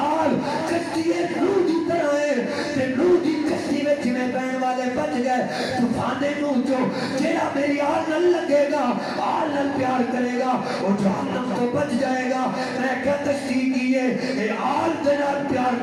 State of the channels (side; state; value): both; identical; correlation 1.00